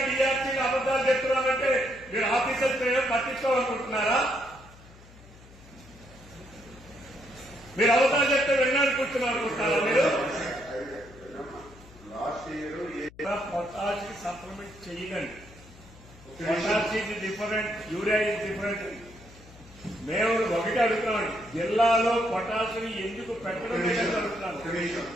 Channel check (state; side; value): noise; left; hum, 22 dB below the sound